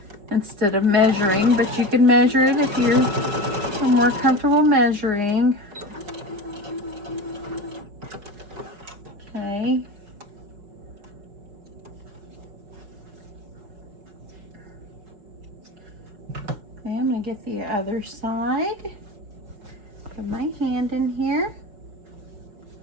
instead of measuring, but you can measure it if you're more comfortable measuring. Okay. get the other side. Put my hand in here.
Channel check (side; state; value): left; late; 5.3 ms